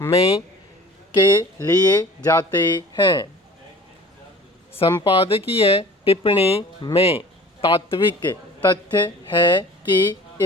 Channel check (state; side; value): normal; both; correlation 0.45